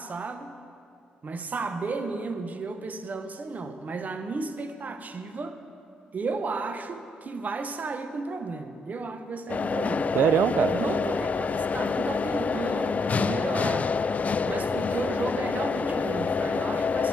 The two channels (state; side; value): normal; both; correlation 0.74